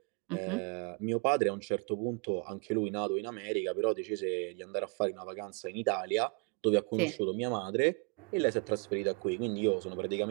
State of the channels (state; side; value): quieter; left; 36.4 dB